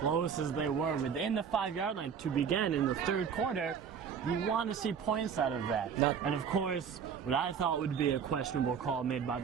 as they were within the 5-yard line to begin in the third quarter, you want to see points out of that. And of course, what I thought would be a questionable call made by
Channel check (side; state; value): left; quieter; 7.1 dB